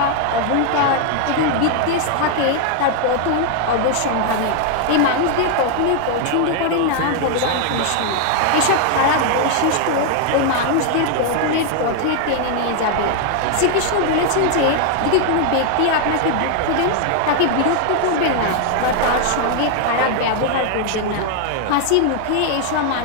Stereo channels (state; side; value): different; both; correlation 0.00